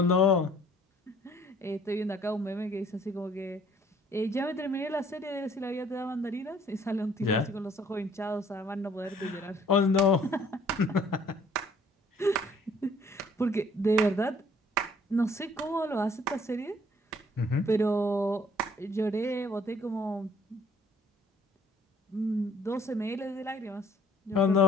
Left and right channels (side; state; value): both; normal; correlation 0.59